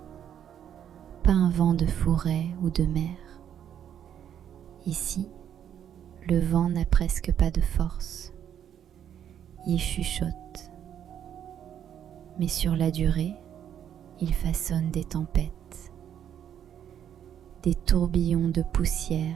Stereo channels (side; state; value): left; quieter; 9.5 dB